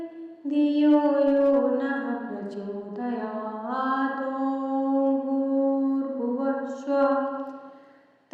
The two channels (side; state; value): both; identical; correlation 1.00